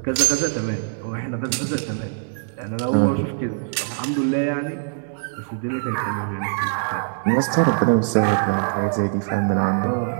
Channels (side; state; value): left; silent; digital silence